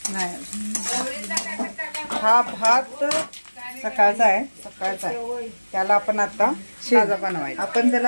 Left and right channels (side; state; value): both; inverted; correlation -1.00